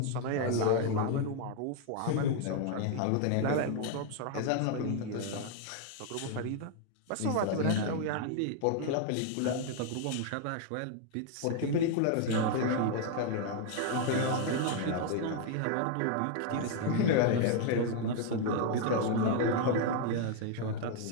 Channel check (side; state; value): both; different; correlation 0.00